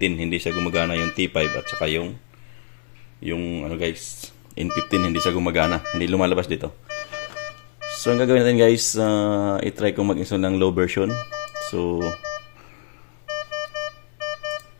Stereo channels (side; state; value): right; silent; 63 dB below the other